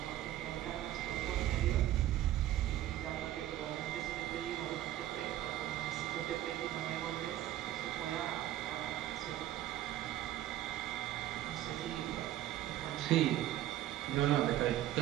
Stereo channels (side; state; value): left; quieter; 13.3 dB